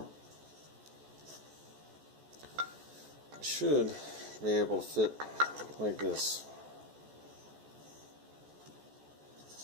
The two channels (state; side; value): late; left; 14 ms